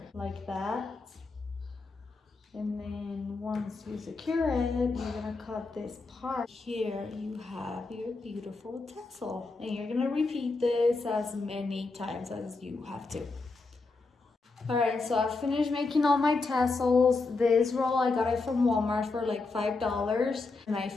like that. And then once you secure it, you're gonna cut this part. Here you have your beautiful tassel, and you're gonna repeat this as many times as you have to. All right, so I finished making all my tassels. This roll, I got it from Walmart for like $5, and I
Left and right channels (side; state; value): right; quieter; 3.8 dB